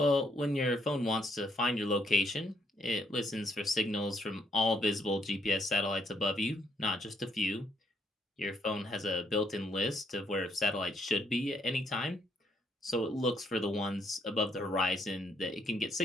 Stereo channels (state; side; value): normal; both; correlation 0.72